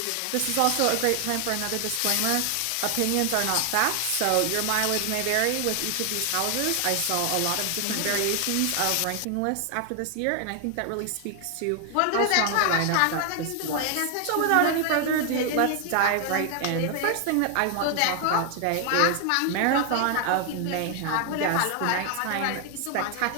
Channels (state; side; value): different; both; correlation 0.00